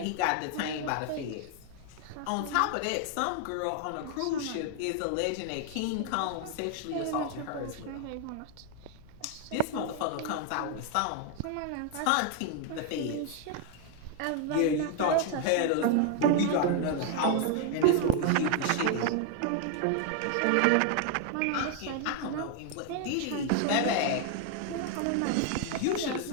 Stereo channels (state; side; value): different; both; correlation 0.00